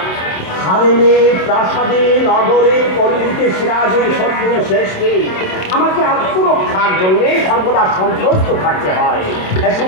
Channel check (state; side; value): late; right; 27 ms